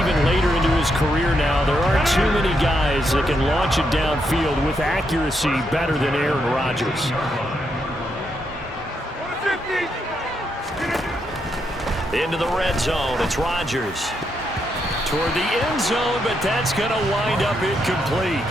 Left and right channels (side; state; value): both; normal; correlation 0.80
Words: later into his career now, there aren't too many guys that can launch it downfield with accuracy better than Aaron Rodgers. Into the red zone, it's Rodgers. Toward the end zone, but that's going to wind up incomplete.